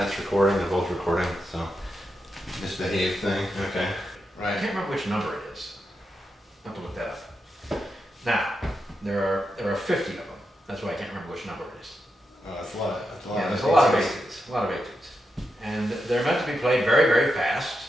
recording. They're both recording, so misbehave thing. Okay. I can't remember which number it is. I'll have to look that up. Now, there are 50 of them. That's why I can't remember which number it is. Oh, that's a lot. Yeah, there's a lot of etudes. A lot of etudes. And they're meant to be played very, very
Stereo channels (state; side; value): normal; both; correlation 0.86